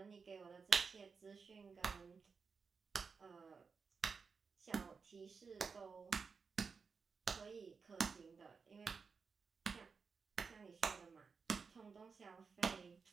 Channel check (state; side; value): quieter; left; 5.2 dB